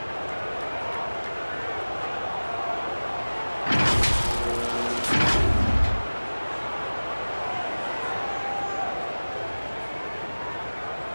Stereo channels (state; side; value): inverted; both; correlation -1.00